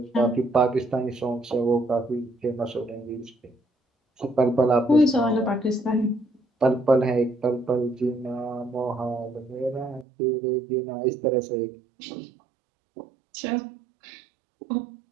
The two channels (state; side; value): drops out; left; at 10.1 s